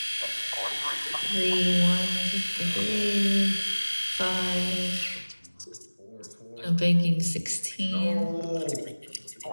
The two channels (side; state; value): both; inverted; correlation -1.00